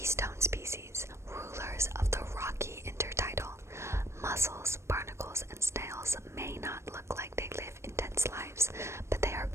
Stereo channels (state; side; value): late; left; 0.13 ms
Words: stone species, rulers of the rocky intertidal. Mussels, barnacles, and snails may not look like they live intense lives, but they are